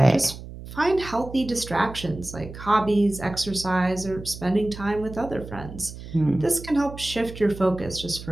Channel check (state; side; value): noise; right; hum, 13 dB below the sound